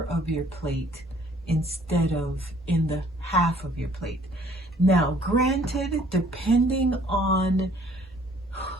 of your plate instead of in the half of your plate. Now, granted, depending on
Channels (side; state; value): both; normal; correlation 0.58